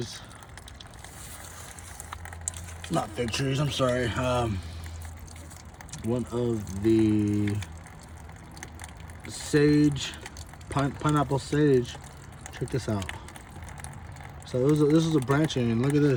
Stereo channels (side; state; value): both; identical; correlation 1.00